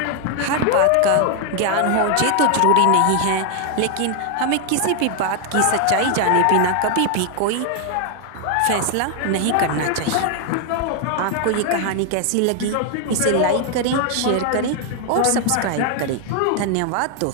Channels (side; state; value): both; different; correlation 0.00